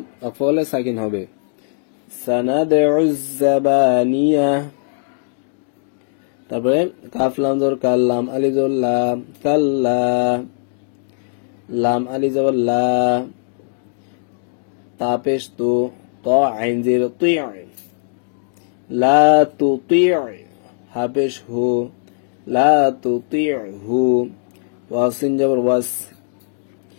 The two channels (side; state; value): right; silent; digital silence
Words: অফলে সাকিন হবে। সানাদ উজ্জাবানিয়া। তারপরে কাফ লাম জবর কাল, লাম আলিফ জবর লা, কাল্লা, লাম আলিফ জবর লা, তা পেশ তু, ত আইন জের তি, লা তুতি, হা পেশ হু, লা তুতিহু। ওয়াসিন জবর ওয়াস,